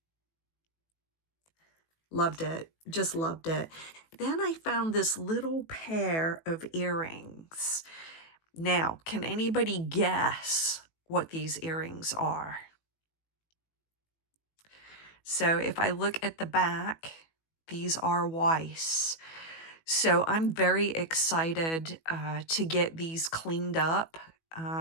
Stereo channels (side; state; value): right; late; 18 ms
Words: Loved it, just loved it. Then I found this little pair of earrings. Now, can anybody guess what these earrings are? So if I look at the back, these are Weiss. So I'm very excited to get these cleaned up,